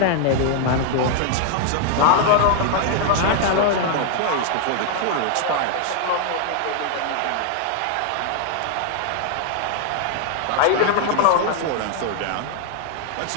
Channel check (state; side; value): different; both; correlation 0.00